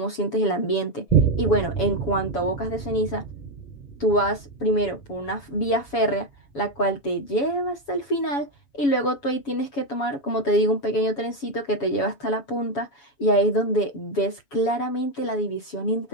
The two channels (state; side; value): late; right; 7.1 ms